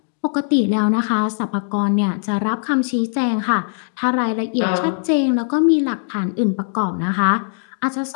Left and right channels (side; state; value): right; silent; digital silence